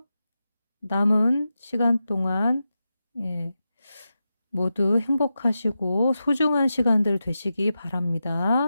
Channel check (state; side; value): inverted; both; correlation -0.90